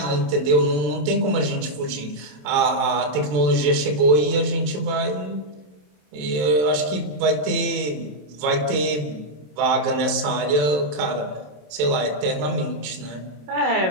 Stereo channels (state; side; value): late; left; 27 ms